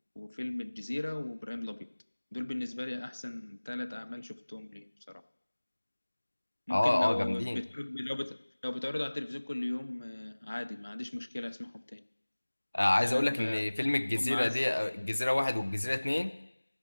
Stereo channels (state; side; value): inverted; both; correlation -1.00